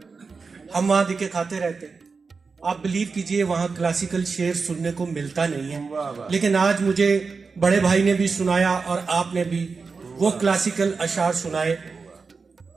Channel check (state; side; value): quieter; left; 4.7 dB